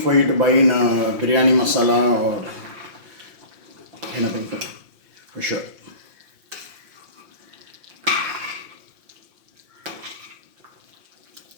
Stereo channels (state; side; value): late; left; 5.7 ms